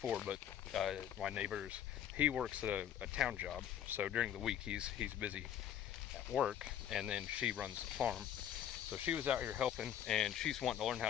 but my neighbor's, he works a town job, so during the week he's busy at work, and then she runs the farm. So she was out here helping, and she's wanting to learn how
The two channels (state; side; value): quieter; right; 10.2 dB